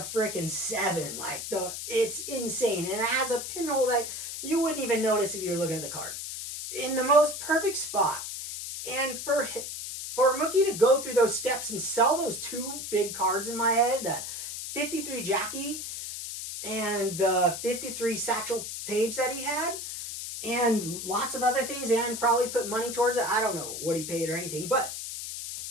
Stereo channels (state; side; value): noise; left; hiss, 7 dB below the sound